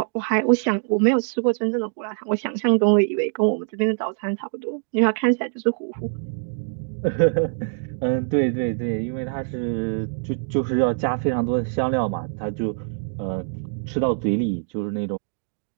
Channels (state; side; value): silent; left; digital silence